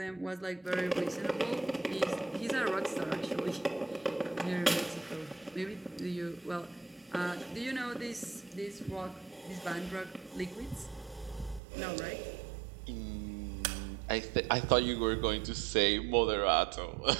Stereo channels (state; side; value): drops out; left; at 11.6 s